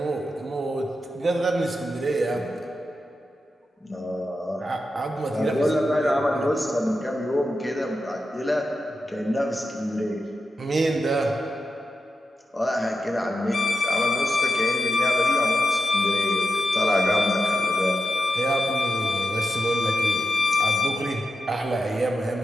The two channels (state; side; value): normal; both; correlation 0.89